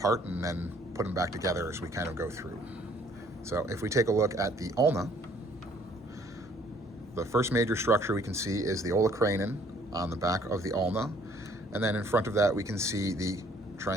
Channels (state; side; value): normal; both; correlation 0.60